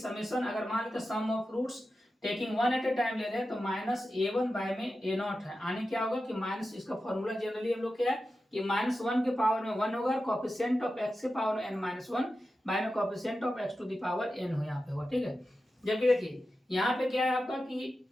अगर मान लेते sum of roots taking 1 at a time ले रहे हैं तो -a1 बाय में a0 है, यानी क्या होगा कि माइनस, इसका फॉर्मूला जनरली हम लोग क्या है कि -1 के पावर में 1 होगा, कोएफिशिएंट ऑफ x के पावर में n-1 बाय में coefficient of x to the power n हो यहाँ पे होगा। ठीक है, जबकि देखिए यहाँ पे क्या है आपका कि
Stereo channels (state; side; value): normal; both; correlation 0.92